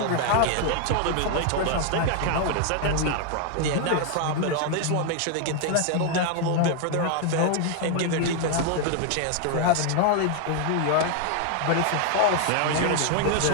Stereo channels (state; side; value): different; both; correlation 0.00